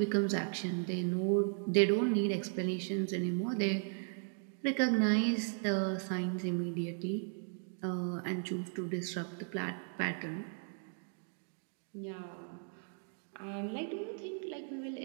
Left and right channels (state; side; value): silent; left; 54 dB below the other